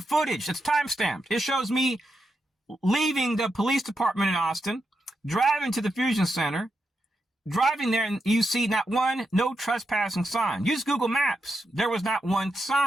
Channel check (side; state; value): both; normal; correlation 0.85